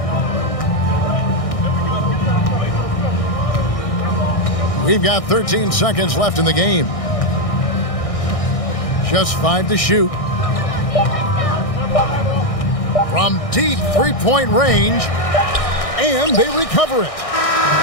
We've got 13 seconds left in the game. Just 5 to shoot. From deep three-point range, and they recover it.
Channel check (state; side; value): late; right; 1.6 ms